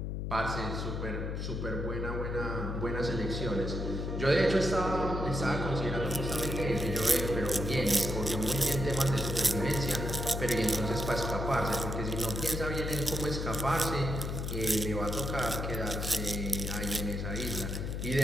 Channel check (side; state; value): left; noise; hum, 3 dB below the sound